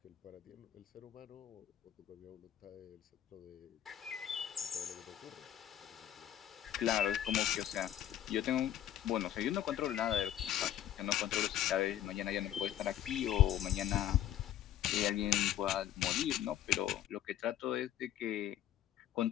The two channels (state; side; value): quieter; right; 11.5 dB